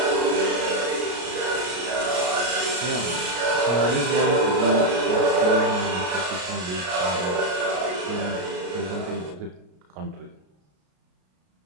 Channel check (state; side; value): late; left; 33 ms